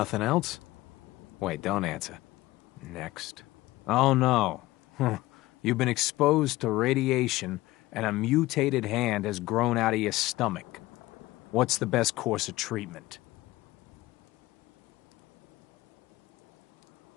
else? Wait, don't answer. Next. Oh no. You've been exposed to radiation and a mutated hand has grown out of your stomach. What's the best course of treatment?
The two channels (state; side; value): quieter; right; 18.3 dB